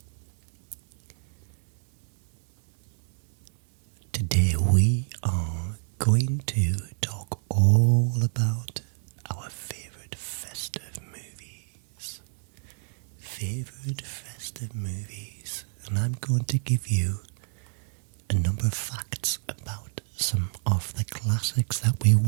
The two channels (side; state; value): left; silent; digital silence